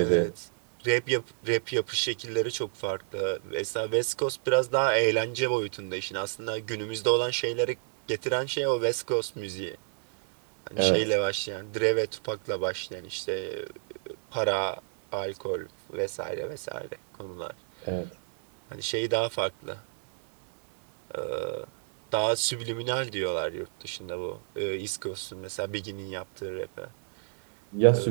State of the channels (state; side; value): silent; left; digital silence